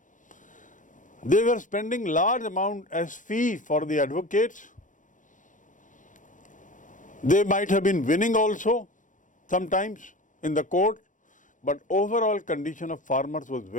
They were spending large amount as fee for the advocates. They might have been winning also sometimes in the court, but overall condition of farmers was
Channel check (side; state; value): right; late; 0.37 ms